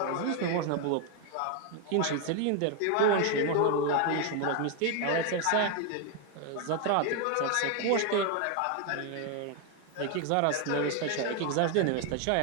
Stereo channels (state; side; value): different; both; correlation 0.01